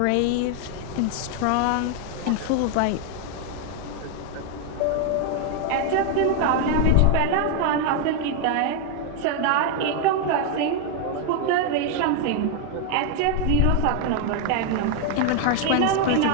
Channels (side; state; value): both; different; correlation 0.01